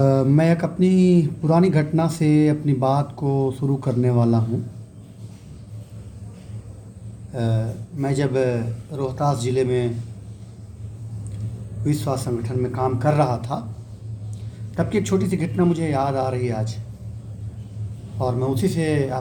मैं एक अपनी पुरानी घटना से अपनी बात को शुरू करने वाला हूँ। मैं जब रोहतास ज़िले में विश्व स्वास्थ्य संगठन में काम कर रहा था, तब की एक छोटी सी घटना मुझे याद आ रही है आज, और मैं उसी से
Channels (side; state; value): both; identical; correlation 1.00